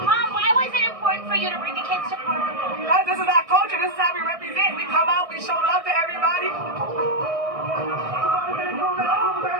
Mom, why was it important for you to bring the kids to Carnival? Because this is our culture. This is how we represent. We come out, we show love to everybody.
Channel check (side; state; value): left; late; 1.6 ms